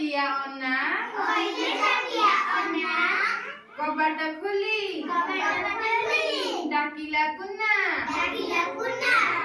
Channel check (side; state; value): both; identical; correlation 1.00